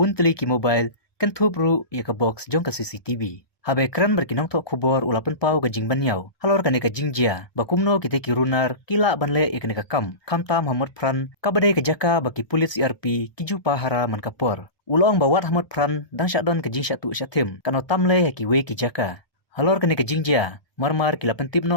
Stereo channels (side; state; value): right; late; 1.2 ms